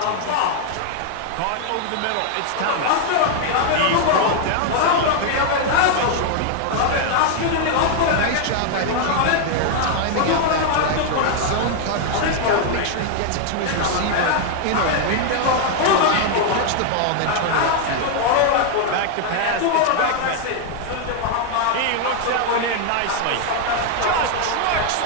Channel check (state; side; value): different; both; correlation 0.00